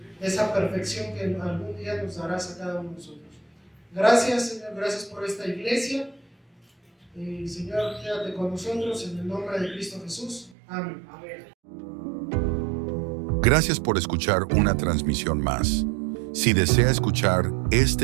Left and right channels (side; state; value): left; drops out; at 10.6 s